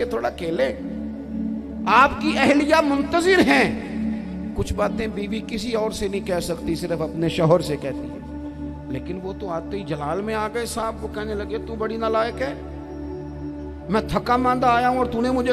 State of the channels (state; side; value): identical; both; correlation 1.00